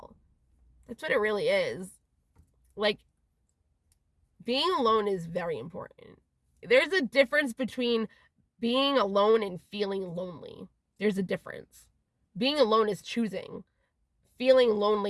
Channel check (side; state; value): both; identical; correlation 1.00